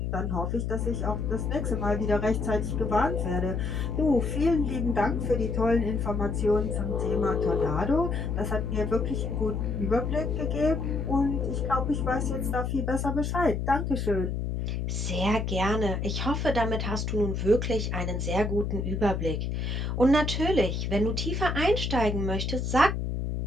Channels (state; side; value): noise; left; hum, 1 dB below the sound